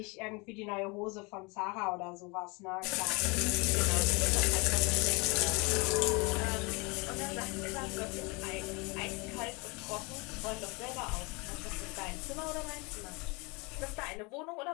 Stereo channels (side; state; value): right; quieter; 28.5 dB